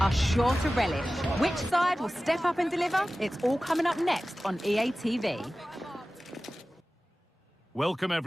sure to relish. Which side will step up and deliver? It's all coming up next on EA TV. Welcome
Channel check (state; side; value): normal; both; correlation 0.96